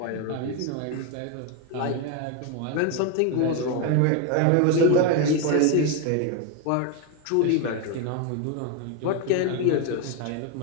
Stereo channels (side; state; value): both; different; correlation 0.02